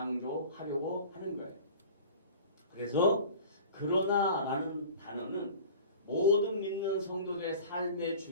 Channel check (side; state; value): both; inverted; correlation -0.41